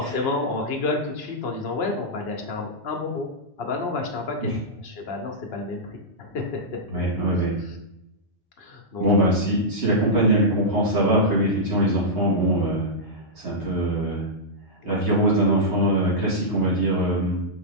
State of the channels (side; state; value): both; normal; correlation -0.10